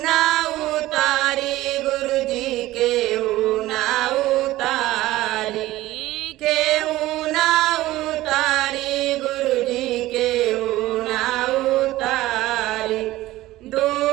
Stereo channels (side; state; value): left; quieter; 16.7 dB